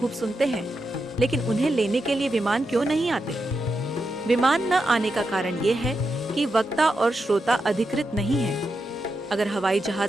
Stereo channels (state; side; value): normal; both; correlation 0.87